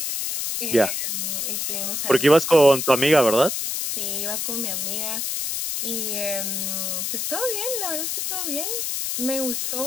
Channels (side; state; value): left; noise; hiss, 2 dB below the sound